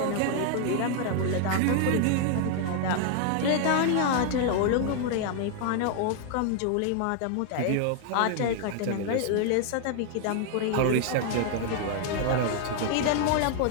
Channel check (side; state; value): both; different; correlation 0.00